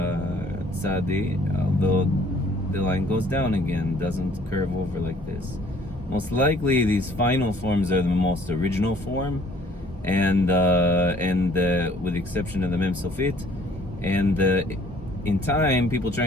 tsádi, although the line goes down again, doesn't curve over like this. Most likely these final forms are the most original form, and with the exception of the mem sofit, and in time people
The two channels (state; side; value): normal; both; correlation 0.58